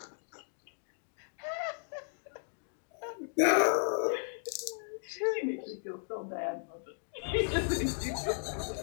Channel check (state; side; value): silent; right; digital silence